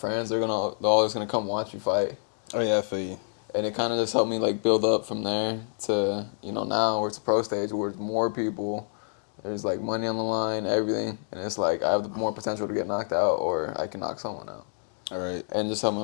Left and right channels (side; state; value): right; silent; digital silence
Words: they're always gonna come watch you fight. Oh yeah, I feel you. And it kind of just helped me like build up from there to, you know, now where it's a pro stage where it's more people. There's like money on the line, everything, and it's like I have the more potential to get knocked out, or I can knock someone out. All right. And just help. I